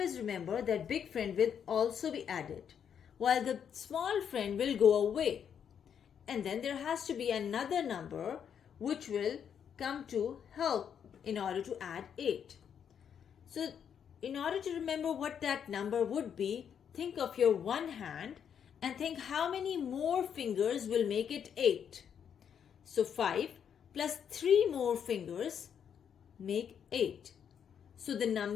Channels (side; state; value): right; quieter; 8.1 dB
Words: remember that big friend will also be added, while the small friend will go away. And then there has to be another number which will come to help in order to add 8. So, in order to remember what that number would be, think of your one hand and think how many more fingers will make it 8. So 5 plus 3 more fingers make 8. So